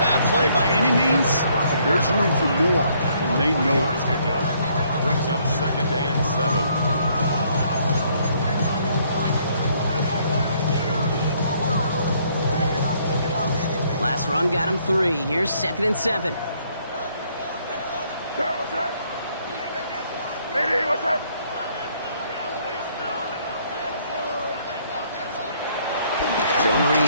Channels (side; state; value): both; inverted; correlation -0.67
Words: play by any means, but there's room for more, and they know it. Brings up 2nd and 7. Last run got him 3. Here's 2nd and 7. What's that? Eddie, what's that? Zone